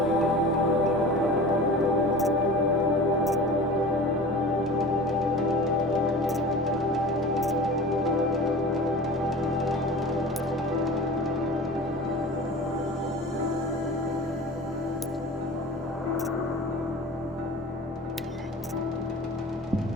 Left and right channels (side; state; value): both; normal; correlation 0.36